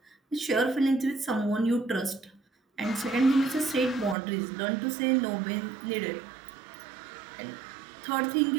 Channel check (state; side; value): drops out; left; at 4.2 s